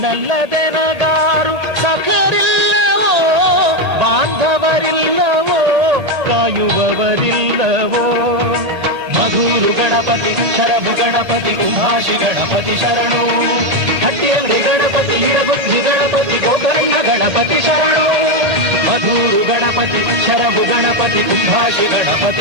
ಸಖರಿಲ್ಲವೋ ಬಾಂಧವರಿಲ್ಲವೋ ಕಾಯುವವರಿಲ್ಲವೋ. ಮಧುರು ಗಣಪತಿ ಶರಭು ಗಣಪತಿ ಕುಂಭಾಷಿ ಗಣಪತಿ ಶರಣು. ಹಟ್ಟಿಯಂಗಡಿ ಗಣಪತಿ ಇಡಗುಂಜಿ ಗಣಪತಿ ಗೋಕರ್ಣ ಗಣಪತಿ ಶರಣು. ಮಧುರು ಗಣಪತಿ ಶರಭು ಗಣಪತಿ ಕುಂಭಾಷಿ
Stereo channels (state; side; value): late; left; 1.8 ms